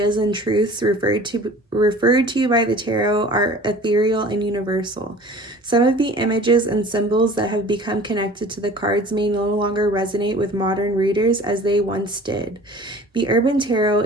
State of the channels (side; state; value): both; normal; correlation 0.45